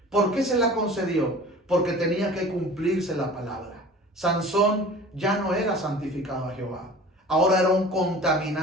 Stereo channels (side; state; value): both; normal; correlation 0.42